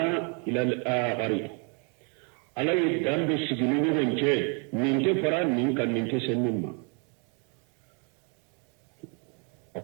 ila al-akhari ala ye dan do sigi ni ɲɔgɔn cɛ nin tɛ fara nin kan nin tɛ se min ma a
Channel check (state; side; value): quieter; left; 36.7 dB